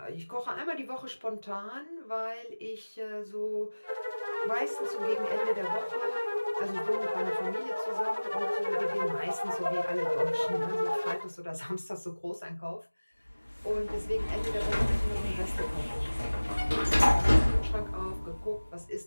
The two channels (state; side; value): inverted; both; correlation -1.00